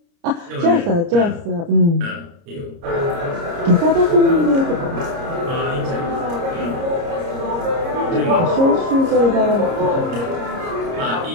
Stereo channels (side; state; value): left; late; 30 ms